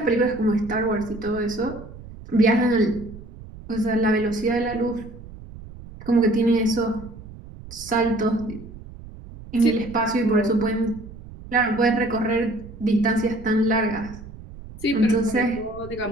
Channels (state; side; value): noise; right; rumble, 15 dB below the sound